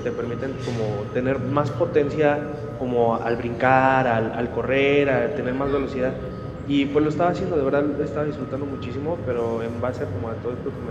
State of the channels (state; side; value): identical; both; correlation 1.00